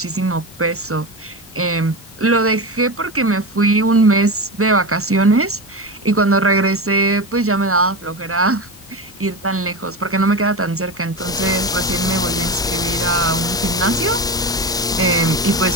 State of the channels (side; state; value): both; normal; correlation 0.21